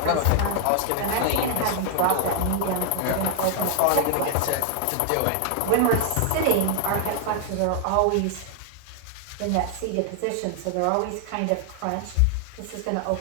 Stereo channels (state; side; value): different; both; correlation 0.00